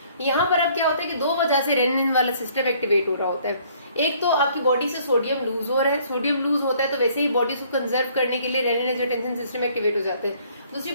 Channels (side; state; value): both; inverted; correlation -0.60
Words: यहाँ पर अब क्या होता है कि दो वजह से रेनिन वाला सिस्टम एक्टिवेट हो रहा होता है। एक तो आपकी बॉडी से सोडियम लूज हो रहा है, सोडियम लूज होता है तो वैसे ही बॉडी को कंजर्व करने के लिए रेनिन एंजियोटेंसिन सिस्टम एक्टिवेट हो जाते हैं। दूसरी